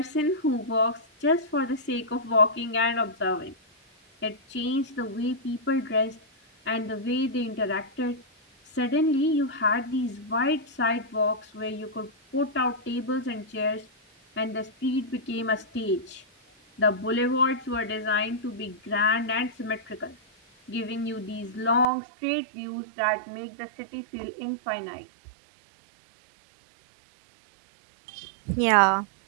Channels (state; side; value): drops out; left; at 21.9 s